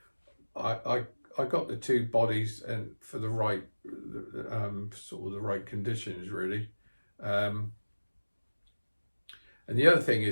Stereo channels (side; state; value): both; inverted; correlation -1.00